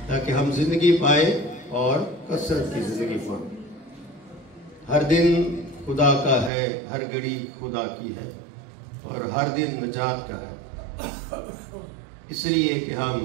تاکہ ہم زندگی پائیں اور کثرت کی زندگی پائیں۔ ہر دن خدا کا ہے، ہر گھڑی خدا کی ہے اور ہر دن نجات کا ہے، اس لیے کہ ہم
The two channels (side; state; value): left; drops out; at 6.5 s